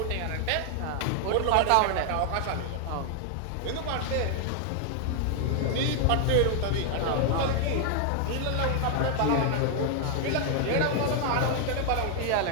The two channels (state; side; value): different; both; correlation 0.00